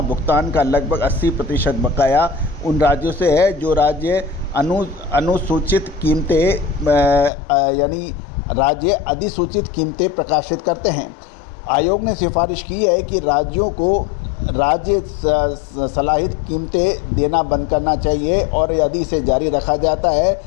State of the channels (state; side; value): drops out; right; at 7.3 s